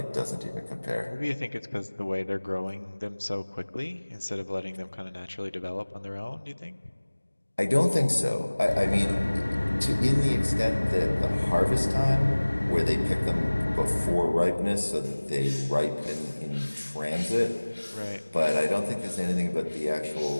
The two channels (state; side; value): inverted; both; correlation -1.00